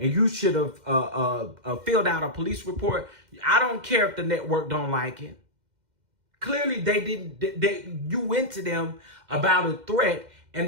you should have filled out a police report. I don't care if the network don't like it. Clearly, they didn't. You went to them about a threat,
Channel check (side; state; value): left; late; 2.1 ms